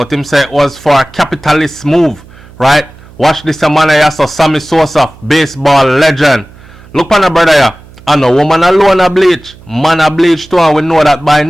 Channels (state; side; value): noise; right; hum, 23 dB below the sound